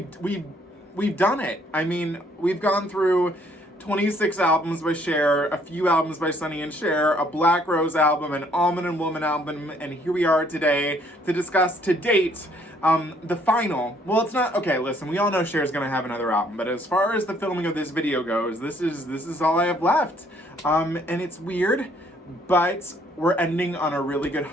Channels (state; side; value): normal; both; correlation 0.64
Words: done it. I mean, we've gone through 26 albums by Cher, a few albums by Sonny and Cher, a Black Rose album, an Almond and Woman album, and here we are today to discuss to date the final. Well, it's not, okay, listen, we all know Cher's gonna have another album, but as far as the filming of this video goes, this is all I have left. And it's weird, but we're ending on a really good